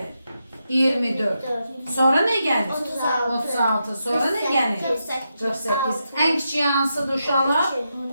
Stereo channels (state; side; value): inverted; both; correlation -0.85